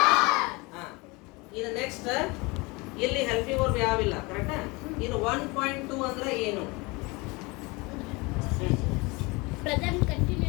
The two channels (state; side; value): quieter; right; 25.5 dB